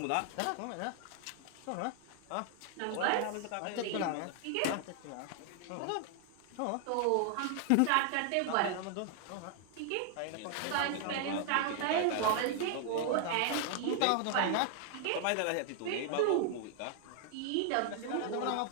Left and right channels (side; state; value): both; different; correlation 0.00